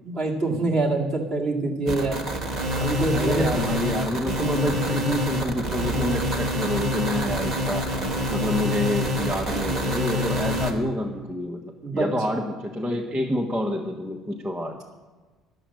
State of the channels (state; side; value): normal; both; correlation 0.55